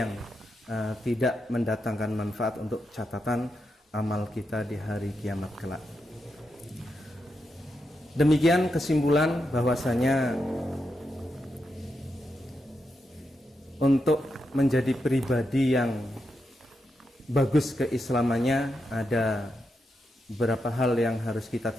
tidak mendatangkan manfaat untuk catatan amal kita di hari kiamat kelak. Demikian kesimpulan bahwasanya untuk menjadi pribadi yang bagus keislamannya ada beberapa hal yang harus kita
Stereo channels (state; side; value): normal; both; correlation 0.85